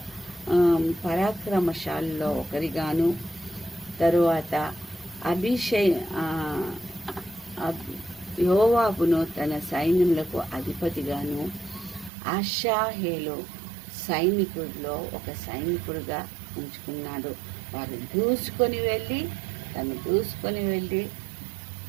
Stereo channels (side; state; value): left; drops out; at 12.1 s